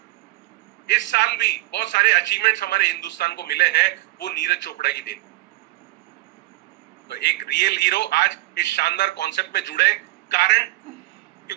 इस साल भी बहुत सारे अचीवमेंट्स हमारे हिंदुस्तान को मिले हैं, वो नीरज चोपड़ा की देन। तो एक रियल हीरो आज इस शानदार कॉन्सेप्ट में जुड़े, कारण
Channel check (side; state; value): left; quieter; 19.4 dB